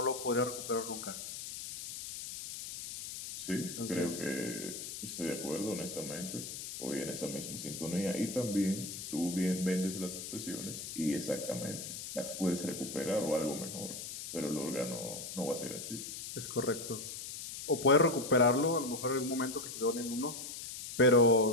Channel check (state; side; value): noise; left; hiss, 8 dB below the sound